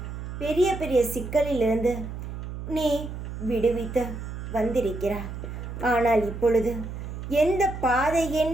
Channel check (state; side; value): noise; right; hum, 8 dB below the sound